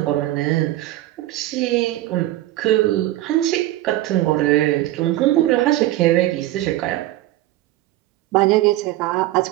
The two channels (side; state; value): left; quieter; 15.8 dB